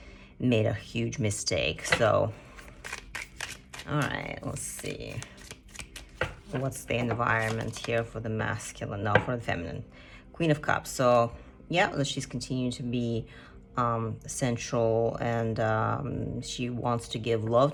a huge mistake. So, all right, let's see. What's the environment here for the masculine? No, for the feminine. Queen of Cups. So, yeah, she's continuing to be sensual, and she wants to give love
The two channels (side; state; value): both; identical; correlation 1.00